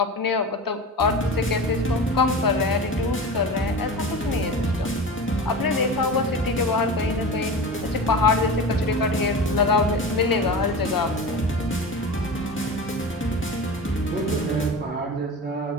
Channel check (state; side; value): normal; both; correlation 0.30